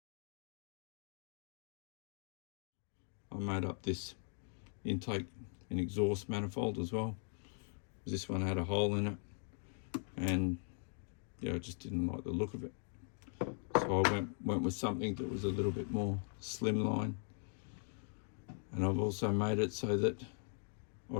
made up this intake and exhaust manifold as well. This one had a hole in it, and yeah, I just didn't like the look of it. So I went with something that was a little bit more slimline, and I've also made it so that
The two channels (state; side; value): silent; right; 51 dB below the other